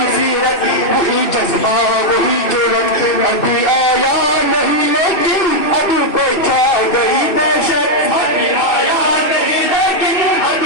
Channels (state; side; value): late; right; 2.6 ms